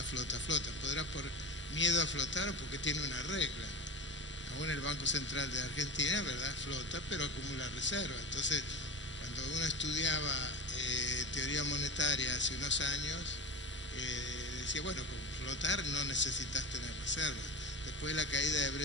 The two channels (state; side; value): normal; both; correlation 0.29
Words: Podrá por miedo a flotar o porque tiene una regla. Aún el Banco Central de Argentina, ¿verdad?, flota, pero acumula reservas. Entonces, cuando uno estudiaba teoría monetaria hace unos años, decía, bueno, con flotar no necesitas tener reservas. Después de la caída de